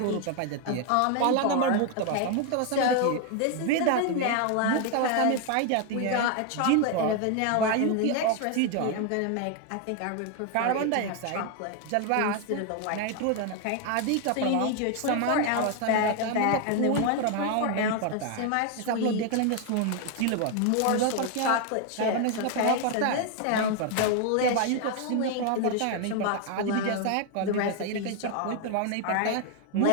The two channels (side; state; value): both; different; correlation 0.01